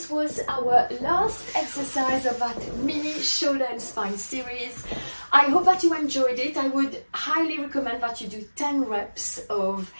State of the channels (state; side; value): inverted; both; correlation -1.00